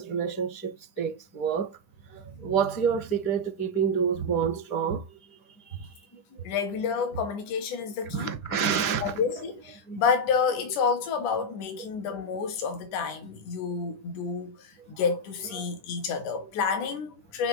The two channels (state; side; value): late; right; 10 ms